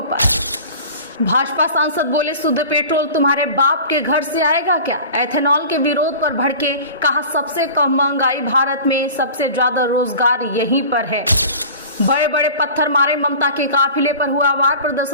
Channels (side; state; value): both; inverted; correlation -0.40